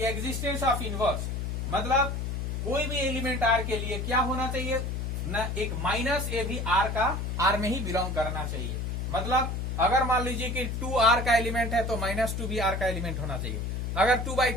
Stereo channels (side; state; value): left; noise; hum, 2 dB below the sound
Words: एग्जिस्टेंस ऑफ इनवर्स, मतलब कोई भी एलिमेंट आर के लिए क्या होना चाहिए न, एक माइनस ए भी आर में ही बिलोंग करना चाहिए। मतलब अगर मान लीजिए कि 2 आर का एलिमेंट है तो -2 भी आर का एलिमेंट होना चाहिए। अगर